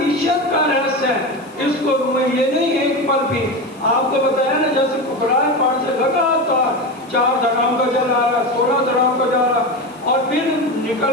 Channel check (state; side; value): noise; left; hiss, 28 dB below the sound